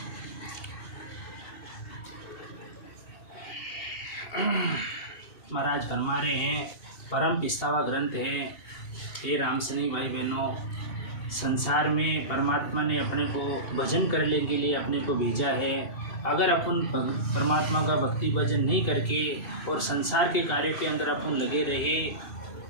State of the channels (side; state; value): right; late; 2.8 ms